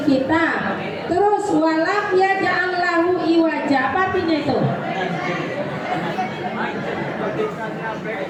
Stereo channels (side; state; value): both; identical; correlation 1.00